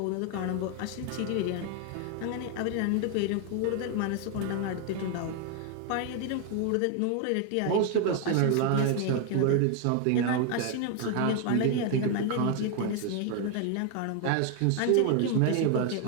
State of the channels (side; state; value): both; different; correlation 0.01